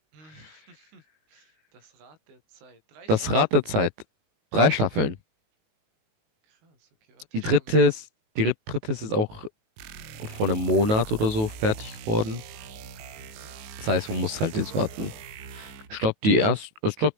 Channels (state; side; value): late; left; 19 ms